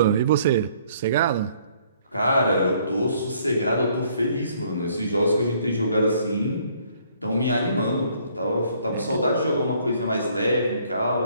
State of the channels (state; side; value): inverted; both; correlation -0.63